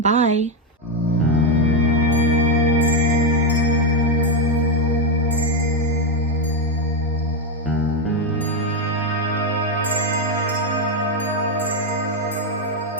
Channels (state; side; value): normal; both; correlation 0.05